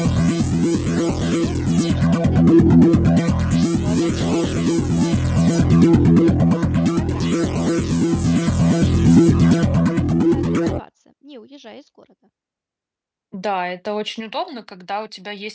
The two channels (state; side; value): identical; both; correlation 1.00